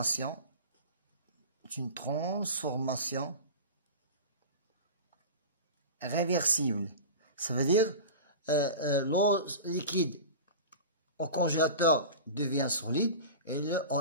est une transformation réversible. Ça veut dire l'eau liquide au congélateur devient solide et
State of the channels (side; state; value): both; inverted; correlation -0.31